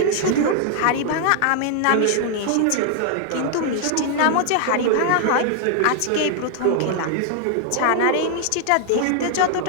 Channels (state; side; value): different; both; correlation 0.00